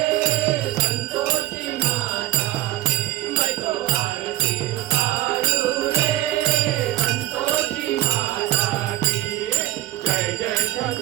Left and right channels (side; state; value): left; quieter; 15.5 dB